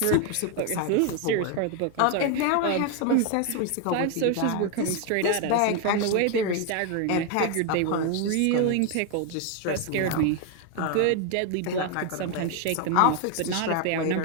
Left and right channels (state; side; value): different; both; correlation 0.01